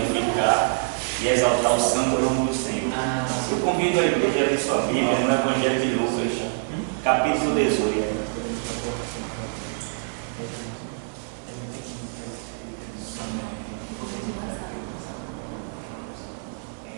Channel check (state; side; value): silent; left; digital silence